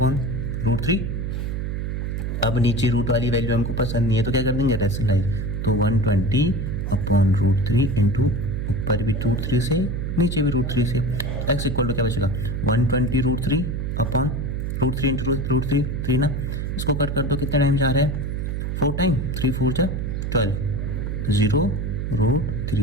अब नीचे रूट वाली वैल्यू हमको पसंद नहीं है, तो क्या कर देंगे, रेशनलाइज. तो 120/√3 इंटू ऊपर भी √3 से, नीचे भी √3 से. x इक्वल टू क्या बचेगा, 120√3/√3 इंटू √3 ना. इसको कट कर दो, कितना टाइम जा रहा है, 4 टाइम 3 4 जा 12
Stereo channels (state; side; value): noise; right; hum, 2 dB below the sound